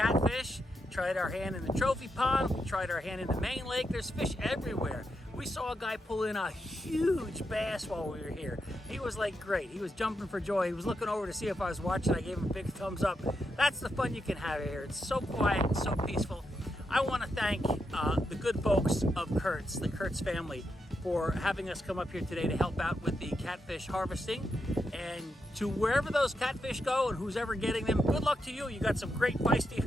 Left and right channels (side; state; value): both; normal; correlation 0.84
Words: tried our hand in the trophy pond, we tried our hand in the main lake. There's fish everywhere. We saw a guy pull in a huge bass while we were here. He was like great. He was jumping for joy. He was looking over to see if I was watching. I gave him a big thumbs up. That's the fun you can have here. It's so quiet, so peaceful. I want to thank the good folks of Kurtz, the Kurtz family, for having us come up here today to help out with the catfish harvesting. And to wherever those catfish go and who's ever getting them, good luck to you. You got some great feisty